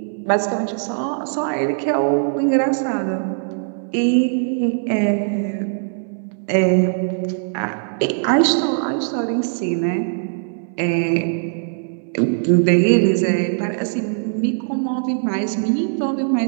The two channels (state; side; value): silent; left; digital silence